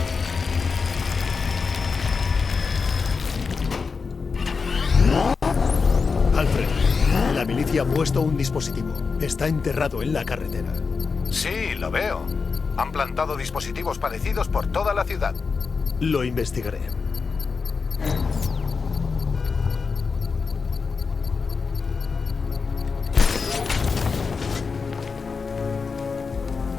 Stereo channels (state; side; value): quieter; right; 5.0 dB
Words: La milicia ha puesto un dispositivo. Está enterrado en la carretera. Sí, lo veo. Han plantado dispositivos parecidos por toda la ciudad. Lo investigaré.